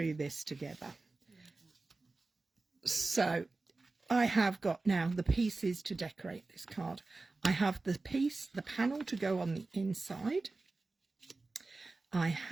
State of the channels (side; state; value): left; quieter; 3.5 dB